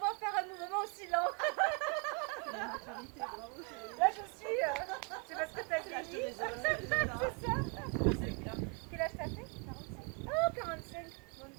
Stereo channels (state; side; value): quieter; left; 36.0 dB